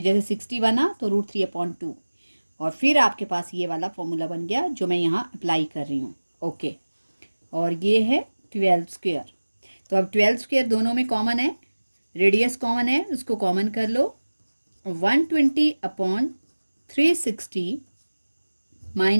जैसे 60 बना तो √3/2 और फिर आपके पास ये वाला फॉर्मूला बन गया जो मैं यहाँ अप्लाई कर रही हूँ। ओके, और ये है 12²। तो अब 12² दोनों में कॉमन है, रेडियस कॉमन है, उसको कॉमन कर लो। 120/360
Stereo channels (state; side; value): inverted; both; correlation -1.00